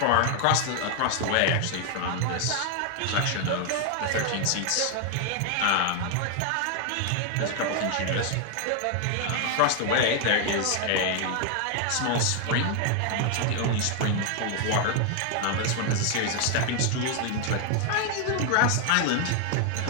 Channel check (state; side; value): different; both; correlation 0.00